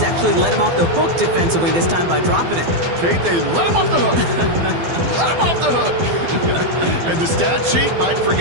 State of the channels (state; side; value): late; left; 12 ms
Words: actually let him off the hook defensively this time by dropping it. Kate, they let him off the hook. Let him off the hook. And the stat sheet might